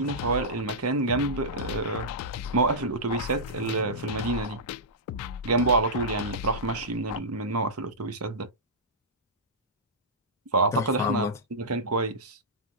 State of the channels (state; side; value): normal; both; correlation -0.14